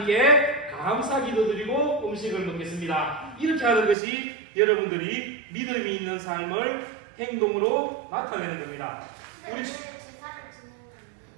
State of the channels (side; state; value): left; drops out; at 4.0 s